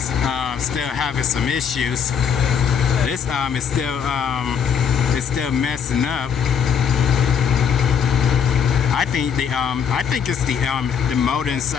still having some issues. This is still messing up. I think it's the motor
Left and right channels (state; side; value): quieter; right; 7.4 dB